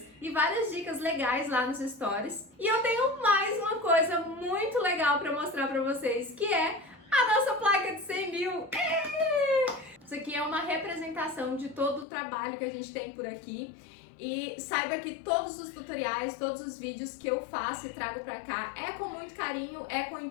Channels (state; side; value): drops out; right; at 12.1 s